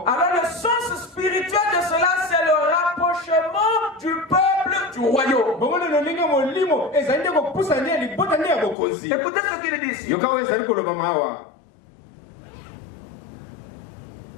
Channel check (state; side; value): drops out; right; at 8.8 s